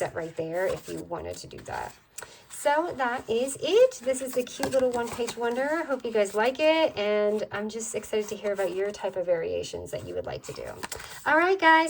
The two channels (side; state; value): both; identical; correlation 1.00